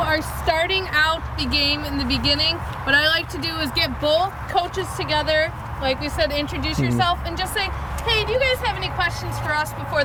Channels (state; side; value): identical; both; correlation 1.00